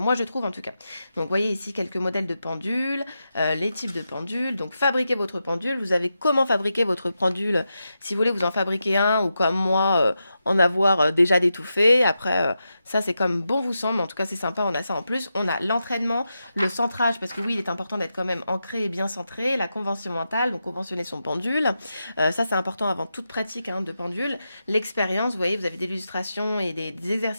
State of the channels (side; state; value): both; inverted; correlation -0.88